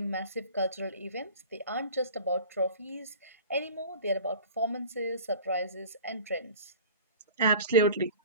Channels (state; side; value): inverted; both; correlation -0.41